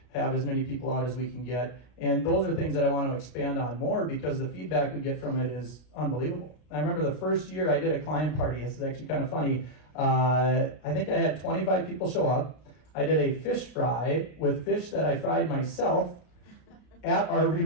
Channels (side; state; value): right; late; 33 ms